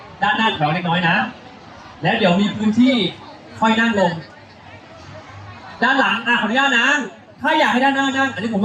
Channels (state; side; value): identical; both; correlation 1.00